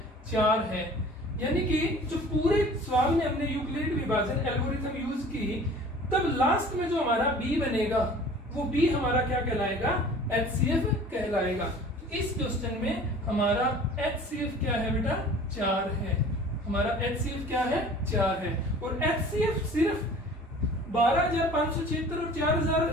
4 है। यानी कि जो पूरे सवाल में हमने यूक्लिड विभाजन एल्गोरिथम यूज की, तब लास्ट में जो हमारा b बनेगा वो b हमारा क्या कहलाएगा, HCF कहलाएगा। इस क्वेश्चन में हमारा HCF क्या है बेटा, 4 है। हमारा HCF क्या है, 4 है। और HCF सिर्फ 12,576 और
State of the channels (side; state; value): both; normal; correlation 0.46